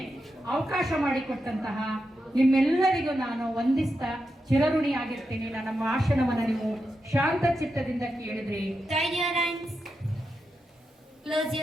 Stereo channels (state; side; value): normal; both; correlation 0.87